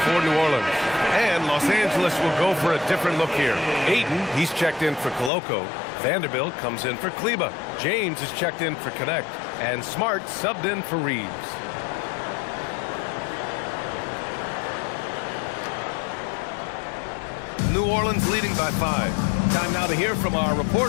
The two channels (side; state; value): right; drops out; at 5.3 s